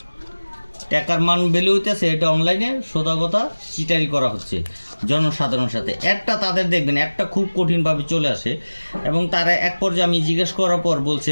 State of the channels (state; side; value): inverted; both; correlation -1.00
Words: টাকার মান ভ্যালু হইতেছে। এটা অনলাইনে সোজা কথা চিটারি করা হচ্ছে জনসাধারণের সাথে। একটা তাদের দেখবেন একটা খুব কঠিনভাবে চলে আসে, এবং তারা এক পর্যায়ে আমি জিজ্ঞেস করার পর বলছে